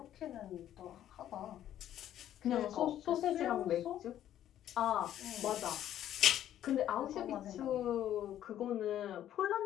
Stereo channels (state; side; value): quieter; right; 11.6 dB